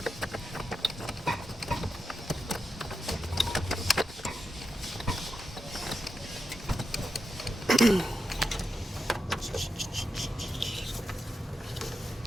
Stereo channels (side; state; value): both; normal; correlation 0.88